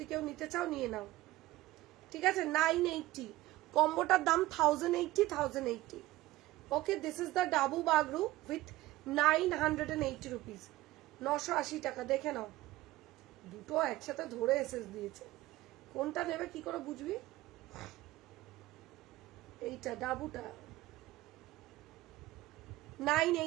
কেউ নিতে চাও নিয়ে নাও, ঠিক আছে। 980 কম্বোটার দাম 1080 okay. This is the dabu Bagru with 980 rupees, 980 টাকা। দেখে নাও দুটো একসাথে ধরে এসএস দিয়েছে, কোনটা নেবে কি করে বুঝবি? এইটা ডাবুটা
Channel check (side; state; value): left; quieter; 17.3 dB